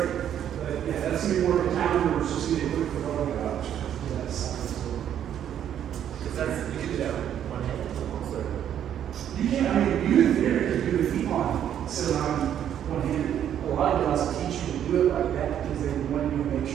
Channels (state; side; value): quieter; left; 10.0 dB